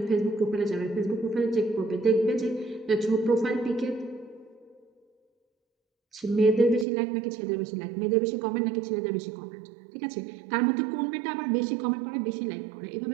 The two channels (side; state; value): left; drops out; at 6.9 s